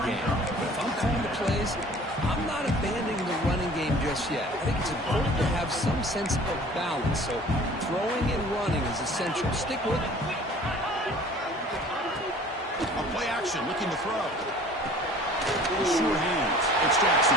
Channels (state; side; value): normal; both; correlation 0.48